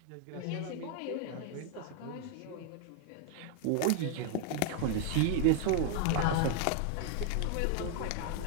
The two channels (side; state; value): both; different; correlation 0.00